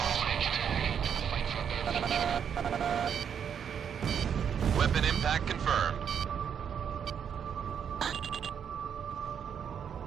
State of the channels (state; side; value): quieter; left; 7.9 dB